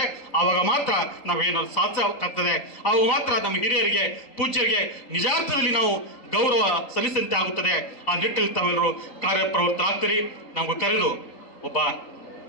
ಆವಾಗ ಮಾತ್ರ ನಾವೇನಾದ್ರು ಸಾಧಿಸಬೇಕಾಗ್ತದೆ. ಆವಾಗ ಮಾತ್ರ ನಮ್ಮ ಹಿರಿಯರಿಗೆ ಪೂಜ್ಯರಿಗೆ ನಿಜಾರ್ಥದಲ್ಲಿ ನಾವು ಗೌರವ ಸಲ್ಲಿಸಂತೆ ಆಗುತ್ತದೆ. ಆ ನಿಟ್ಟಿನಲ್ಲಿ ತಾವೆಲ್ಲರೂ ಕಾರ್ಯಪ್ರವೃತ್ತರಾಗ್ತೀರಿ. ನಮ್ಗೆ ಕರೆದು ಒಬ್ಬ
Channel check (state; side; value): late; right; 3.8 ms